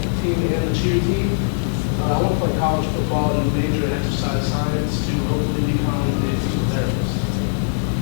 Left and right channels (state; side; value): silent; right; 65 dB below the other